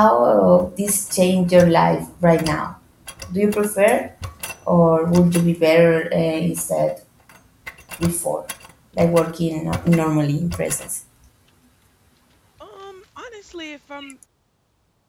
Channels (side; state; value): both; identical; correlation 1.00